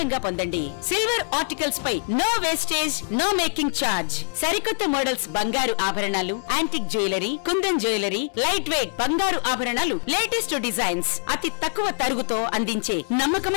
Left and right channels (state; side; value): silent; right; digital silence